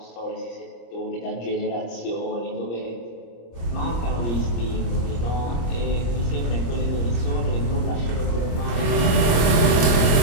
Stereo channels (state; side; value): late; right; 26 ms